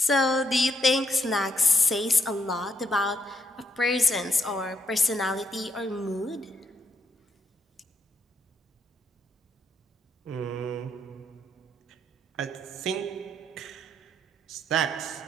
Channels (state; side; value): normal; both; correlation 0.76